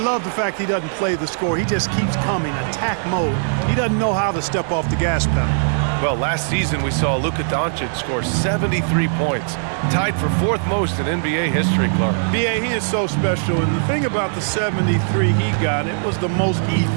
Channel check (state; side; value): silent; left; digital silence